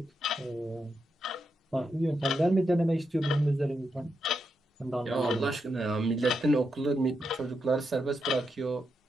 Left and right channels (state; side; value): normal; both; correlation 0.84